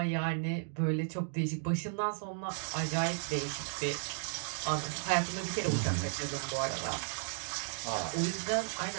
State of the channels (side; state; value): left; silent; digital silence